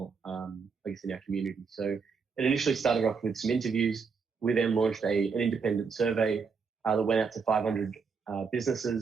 in our community. So it initially started off with some interviews. We then launched an independent survey that went out to 500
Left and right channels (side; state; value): left; quieter; 5.4 dB